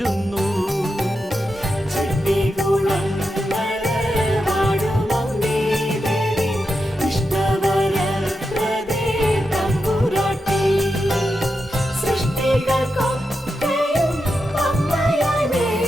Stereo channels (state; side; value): normal; both; correlation 0.88